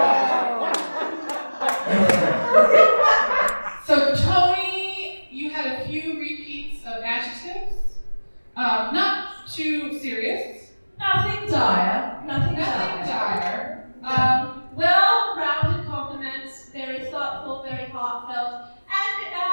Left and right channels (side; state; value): both; inverted; correlation -1.00